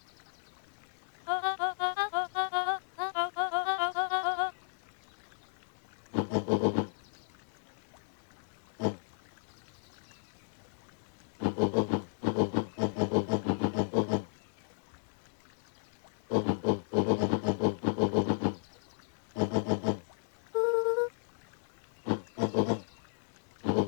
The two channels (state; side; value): silent; right; digital silence